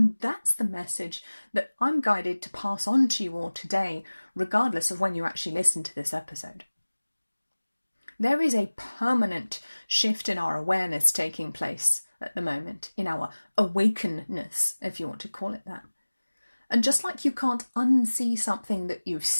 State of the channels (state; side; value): inverted; both; correlation -1.00